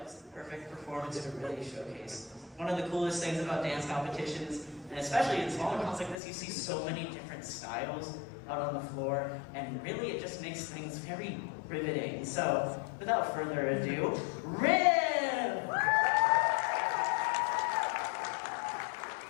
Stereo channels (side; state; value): right; drops out; at 6.2 s